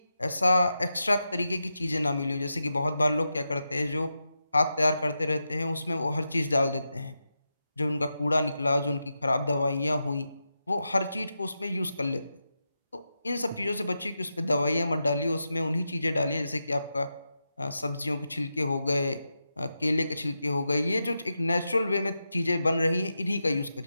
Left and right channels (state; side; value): inverted; both; correlation -0.88